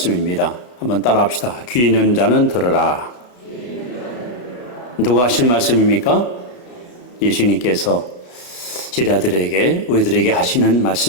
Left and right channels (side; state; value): right; late; 33 ms